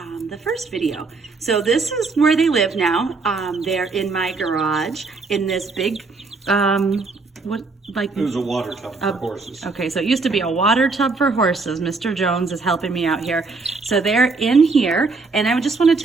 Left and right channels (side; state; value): left; quieter; 4.0 dB